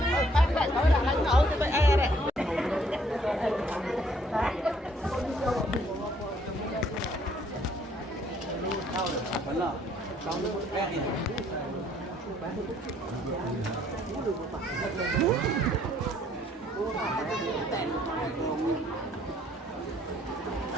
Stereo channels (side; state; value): both; normal; correlation 0.64